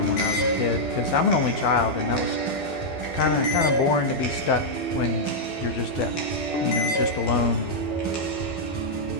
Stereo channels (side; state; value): right; late; 12 ms